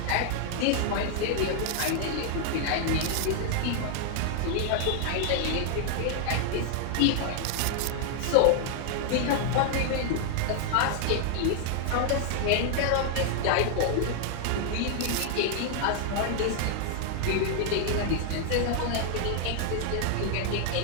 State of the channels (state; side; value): different; both; correlation 0.00